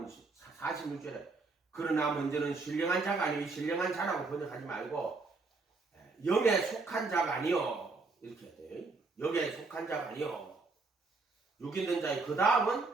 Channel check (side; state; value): left; quieter; 3.9 dB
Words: 46절에 그러나 먼저는 신령한 자가 아니요 신령한 자라고 번역하지 말고 영에 속한 자가 아니요 이렇게 해야 돼요. 영에 속한 자가 아니요 육 있는 자의 그 다음은